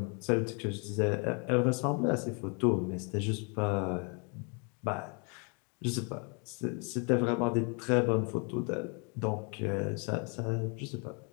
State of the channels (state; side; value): quieter; right; 36.0 dB